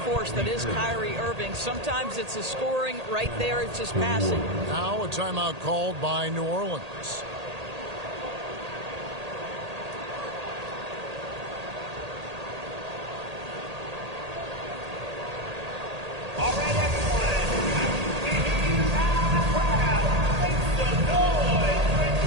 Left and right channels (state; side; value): late; left; 1.8 ms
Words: force that is Kyrie Irving. Sometimes it's the scoring. Right there, it's just passing. Now a timeout called by New Orleans. All right, everyone. I can hear you loud and proud. Make some noise for